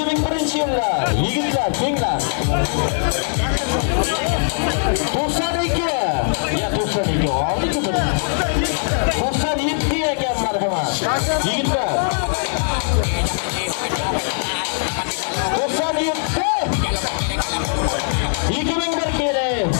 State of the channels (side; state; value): right; silent; digital silence